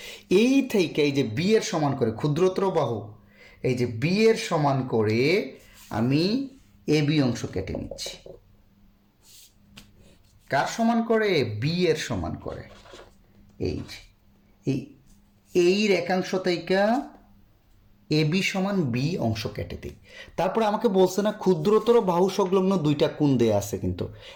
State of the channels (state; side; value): identical; both; correlation 1.00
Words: এই থেকে এই যে বি এর সমান করে ক্ষুদ্রতর বাহু, এই যে বি এর সমান করে আমি এ বি অংশ কেটে নিচ্ছি। কার সমান করে? বি এর সমান করে। এই রেখাংশ থেকে এ বি সমান বি অংশ কেটে দিই। তারপরে আমাকে বলছে না ক্ষুদ্রতর বাহু সংলগ্ন দুইটা কোণ দেয়া আছে কিন্তু